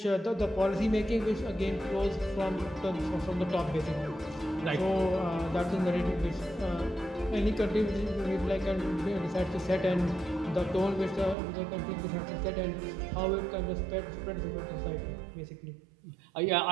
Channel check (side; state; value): left; drops out; at 11.4 s